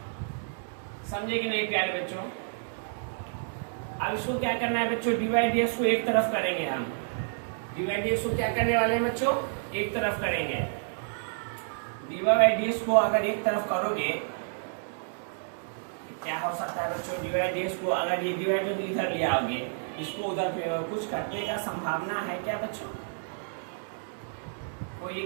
समझे कि नहीं प्यारे बच्चों? अब इसको क्या करना है बच्चों, dy dx को एक तरफ करेंगे हम, dy dx को क्या करने वाले हैं बच्चों, एक तरफ करेंगे। dy बाई dx को अगर एक तरफ करोगे क्या हो सकता है बच्चों, dy dx को अगर ये डिवाइड इधर ले आओगे, इसको उधर कुछ करने का संभावना है क्या बच्चों? कोई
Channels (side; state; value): left; silent; digital silence